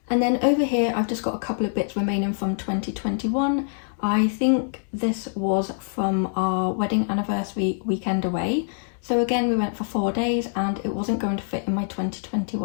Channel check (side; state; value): right; silent; digital silence